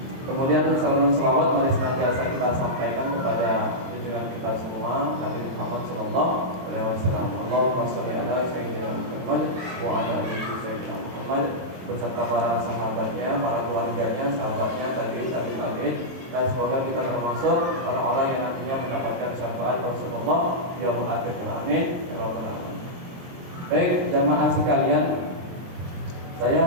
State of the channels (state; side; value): late; left; 23 ms